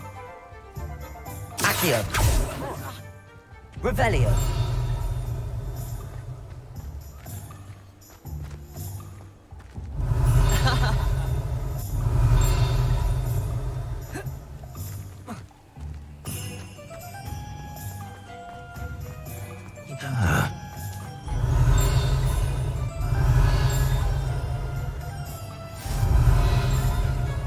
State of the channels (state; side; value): identical; both; correlation 1.00